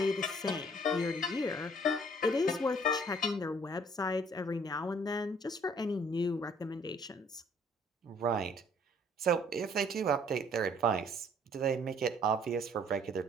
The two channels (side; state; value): both; normal; correlation 0.59